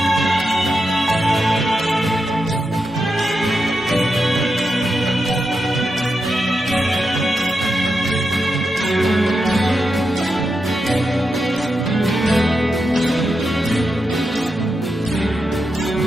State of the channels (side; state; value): both; normal; correlation 0.86